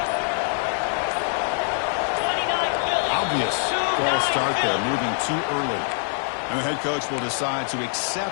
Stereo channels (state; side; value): silent; right; 60 dB below the other